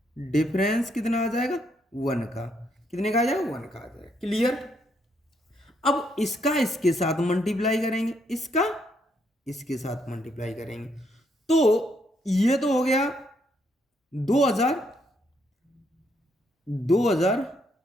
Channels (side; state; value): both; normal; correlation 0.74